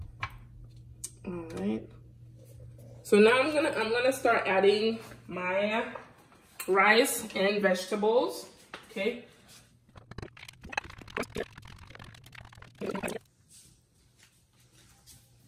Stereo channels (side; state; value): both; identical; correlation 1.00